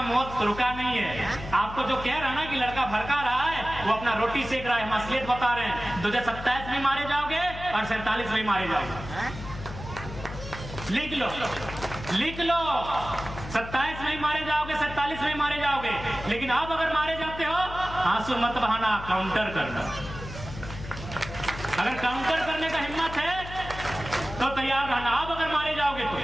मौत रुका नहीं है। आपको जो कह रहा है ना कि लड़का भड़का रहा है, वो अपना रोटी सेक रहा है, हम असलियत बता रहे हैं। 2027 में मारे जाओगे और 47 में मारे जाओगे। लिख लो, लिख लो, 27 में मारे जाओगे, 47 में मारे जाओगे। लेकिन अब अगर मारे जाते हो, आंसू मत बहाना, काउंटर करना। अगर काउंटर करने का हिम्मत है तो तैयार रहना। अब अगर मारे जाओगे तो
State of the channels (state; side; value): noise; left; hum, 11 dB below the sound